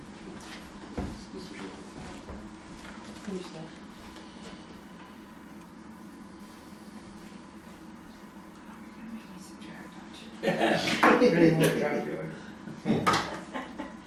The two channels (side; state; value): both; identical; correlation 1.00